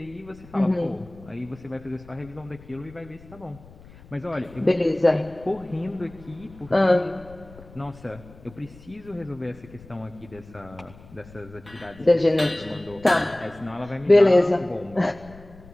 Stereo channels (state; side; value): noise; left; rumble, 21 dB below the sound